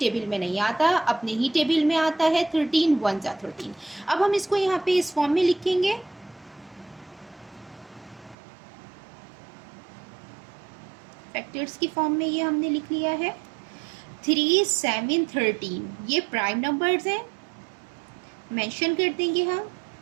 में नहीं आता, अपने ही टेबल में आता है। 13 1 13। अब हम इसको यहाँ पे इस फॉर्म में लिखेंगे। फैक्टर्स की फॉर्म में ये हमने लिख लिया है। 3, 7, 13 ये प्राइम नंबर्स हैं, मेंशन कर देंगे हम।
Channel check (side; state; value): left; drops out; at 8.3 s